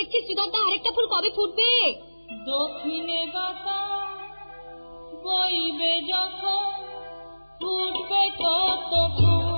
শ্রীধর দা, আরেকটা ফুল কবে ফুটবে? দক্ষিণে বাতাস বইবে যখন ফুটবে কত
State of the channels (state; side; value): inverted; both; correlation -1.00